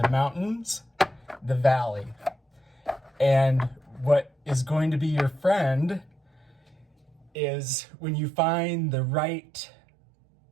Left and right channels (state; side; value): drops out; left; at 7.3 s